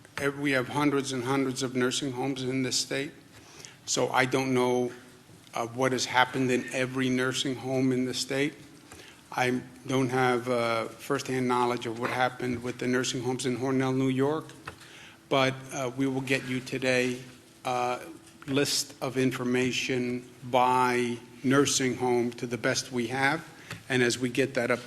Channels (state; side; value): identical; both; correlation 1.00